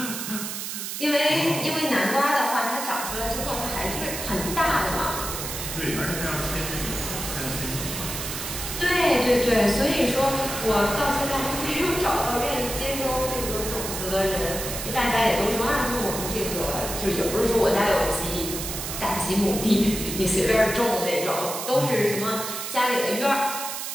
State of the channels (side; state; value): right; noise; hiss, 5 dB below the sound